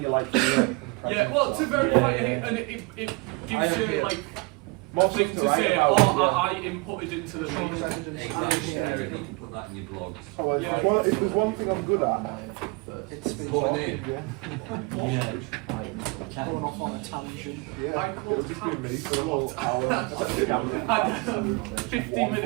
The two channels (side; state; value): left; quieter; 27.5 dB